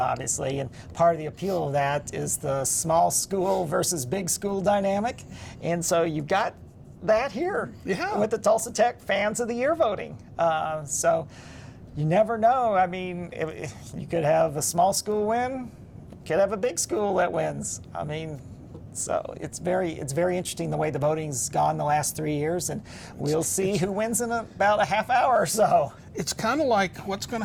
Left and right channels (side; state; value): both; identical; correlation 1.00